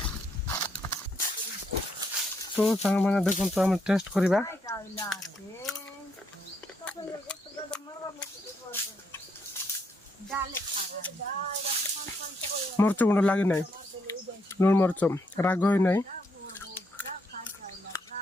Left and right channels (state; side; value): normal; both; correlation 0.75